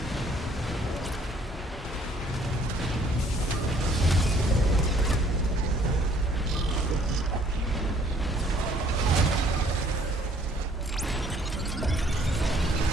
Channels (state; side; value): normal; both; correlation 0.61